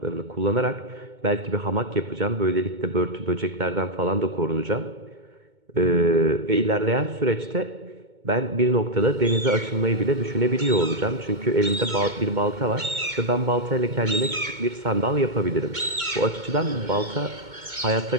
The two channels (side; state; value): left; late; 2.2 ms